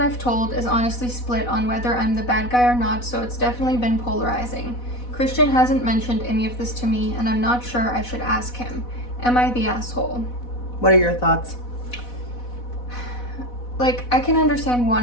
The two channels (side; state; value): right; late; 4.1 ms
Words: told is honestly split on whether I'm the bad guy or not, so it's definitely been polarizing. Christian hasn't mentioned any of this to me, and I'm not sure I should ask him. Am I the asshole? What are your thoughts? Like, I can understand